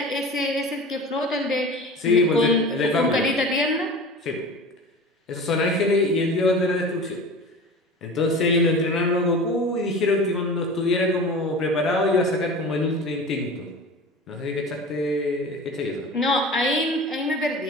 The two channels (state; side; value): normal; both; correlation 0.35